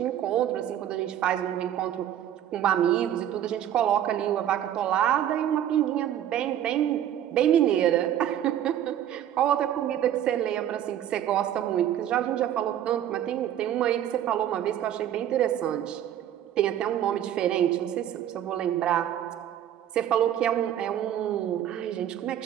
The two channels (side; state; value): left; quieter; 11.0 dB